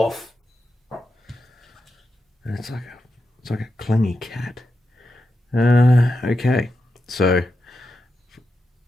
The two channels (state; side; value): normal; both; correlation 0.88